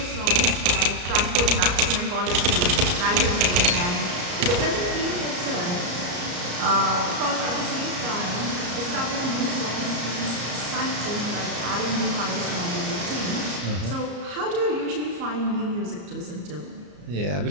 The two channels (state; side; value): late; left; 34 ms